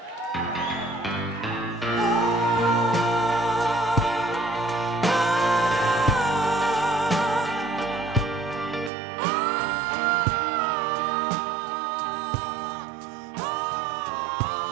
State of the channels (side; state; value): left; drops out; at 8.9 s